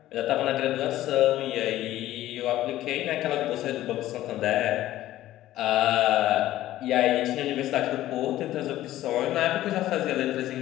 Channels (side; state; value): right; quieter; 14.5 dB